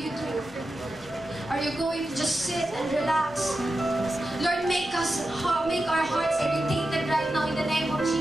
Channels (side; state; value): both; normal; correlation 0.91